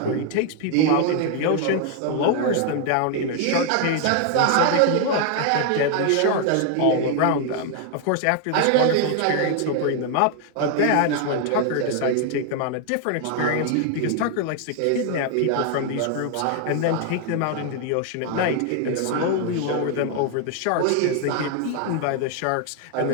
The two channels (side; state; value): both; different; correlation 0.00